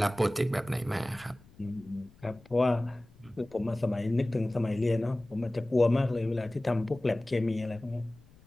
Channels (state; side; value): noise; left; rumble, 26 dB below the sound